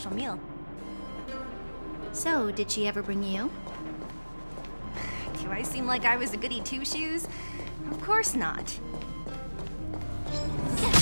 meal. So, did she ever bring you? Do I seem like I was a goody two-shoes? Of course not.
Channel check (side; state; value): both; inverted; correlation -1.00